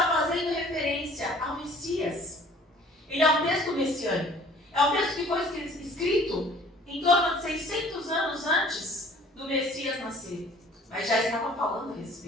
fazendo referência ao Messias. Ele é um texto messiânico. É um texto que foi escrito em torno de 600 anos antes do Messias nascer. Mas já estava falando a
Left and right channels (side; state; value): both; normal; correlation 0.52